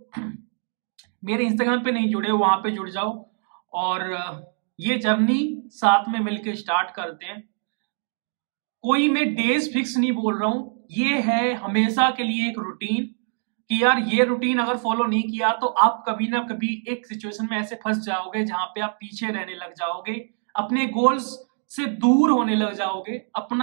मेरे इंस्टाग्राम पे नहीं जुड़े, वहां पे जुड़ जाओ और ये जर्नी साथ में मिलके स्टार्ट करते हैं। कोई मैं डेज फिक्स नहीं बोल रहा हूं, ये है हमेशा के लिए एक रूटीन कि यार ये रूटीन अगर फॉलो नहीं किया तो आप कभी ना कभी एक सिचुएशन में ऐसे फंस जाओगे जहां पे आप पीछे रहने लग जाओगे, अपने गोल्स से दूर होने लग जाओगे।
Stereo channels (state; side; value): silent; left; 60 dB below the other